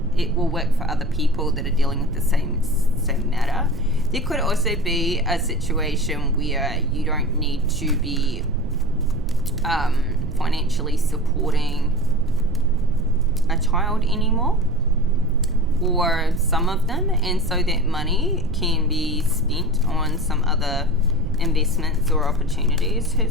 it will work for other people that are dealing with the same matter. There could also be a situation where you don't need to be financially supporting a child anymore, or some of them, and so that money can be spent on some other investments or opportunities.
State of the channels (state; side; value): noise; right; rumble, 7 dB below the sound